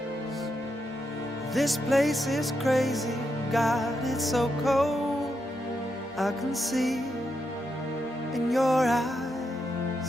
This place is crazy, God, it's so cold. I can see in your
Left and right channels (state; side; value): normal; both; correlation 0.83